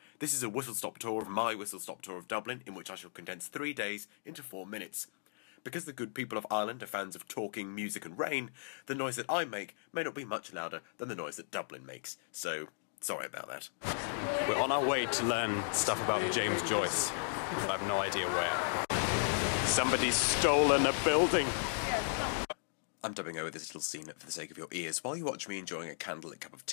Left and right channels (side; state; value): right; silent; digital silence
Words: This is a whistle-stop tour of my whistle-stop tour of Dublin, in which I shall condense 3 days into 4 minutes. Because the good people of Ireland are fans of talking, music and rain, the noise that I make may not be much louder than the noise that Dublin makes, so sorry about that. We're on our way to learn stuff about James Joyce, but I have no idea where. Somebody's stolen a building. I'm dubbing over this little scene for the sake of your ears. While you watch me enjoying a candlelit cup of